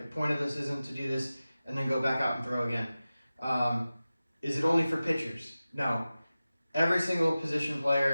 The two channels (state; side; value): inverted; both; correlation -0.96